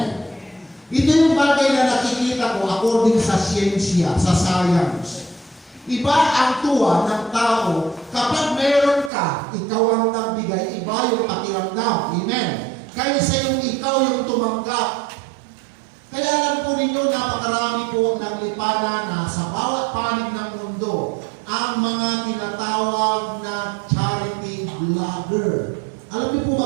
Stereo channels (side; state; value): left; drops out; at 9.1 s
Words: Ito yung bagay na nakikita ko according sa siyensya, sa science. Iba ang tuwa ng tao. Kapag meron ka, ikaw ang nagbigay, iba yung pakiramdam. Amen. Kaysa yung ikaw yung tumanggap. Kaya alam po ninyo, napakarami po ang naglipana na sa bawat panig ng mundo, ang mga tinatawag na charity vlogger. Alam niyo po